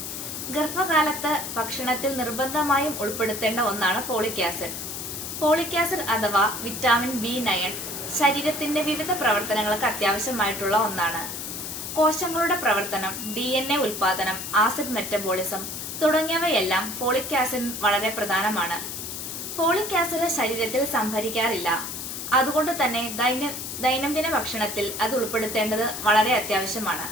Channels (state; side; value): noise; left; hiss, 7 dB below the sound